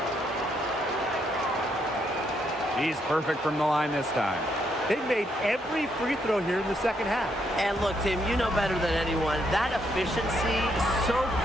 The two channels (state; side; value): normal; both; correlation 0.75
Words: He's perfect from the line this time. They've made every free throw here in the second half. And look, Tim, you know better than anyone, that efficiency is so